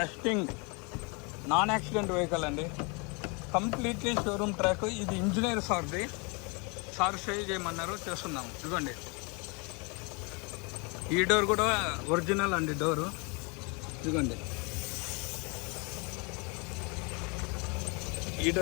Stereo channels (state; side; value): quieter; right; 31.6 dB